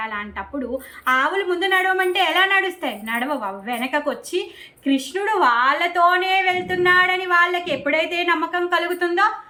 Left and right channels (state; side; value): identical; both; correlation 1.00